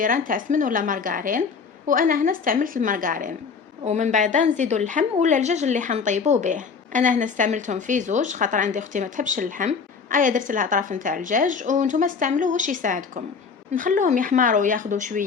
نتاع سمن ولا مارغرين، وانا هنا استعملت المارغرين. ومن بعد نزيدوا اللحم ولا الدجاج اللي حنطيبوا به. انا هنا استعملتهم في زوج خاطر عندي اختي ما تحبش اللحم، ايا درت لها طرف نتاع الدجاج، وانتم استعملوا واش يساعدكم. نخلوهم يحمروا وياخذوا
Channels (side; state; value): right; quieter; 5.5 dB